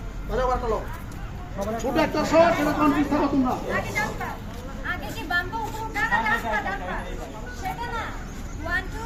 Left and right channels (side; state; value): both; identical; correlation 1.00